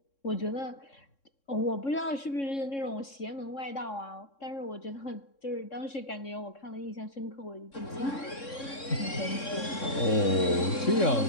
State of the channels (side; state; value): right; late; 3.6 ms